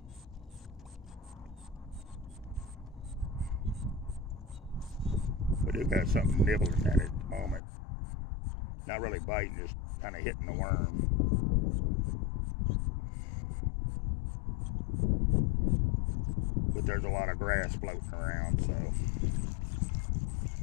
We do got something nibbling at it at the moment. Not really biting, just kind of hitting the worm. But there's a lot of grass floating around, so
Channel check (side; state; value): right; drops out; at 7.6 s